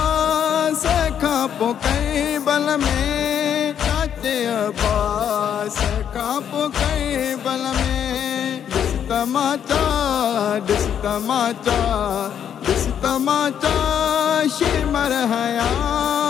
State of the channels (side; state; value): right; quieter; 8.9 dB